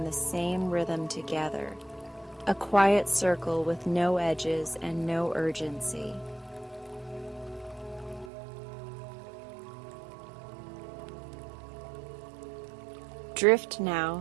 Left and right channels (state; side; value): drops out; left; at 8.3 s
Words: the same rhythm together, a quiet circle with no edges and no urgency. Drift